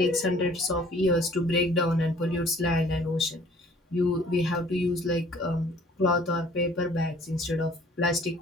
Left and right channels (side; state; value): both; normal; correlation 0.54